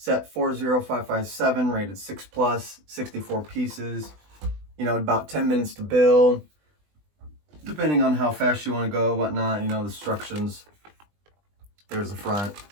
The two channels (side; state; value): left; late; 20 ms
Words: 40557, rated 6+, 64 pieces. You know, about 10 minutes to build, depending on how fast you want to go, whatnot. You know, the instructions. There's the front.